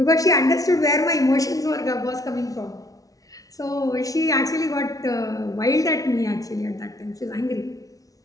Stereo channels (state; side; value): late; right; 0.18 ms